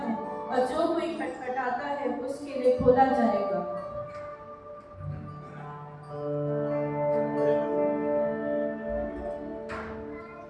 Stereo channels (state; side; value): identical; both; correlation 1.00